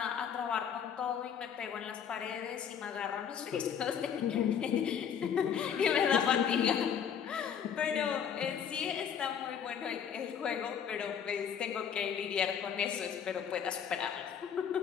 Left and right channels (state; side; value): quieter; right; 8.0 dB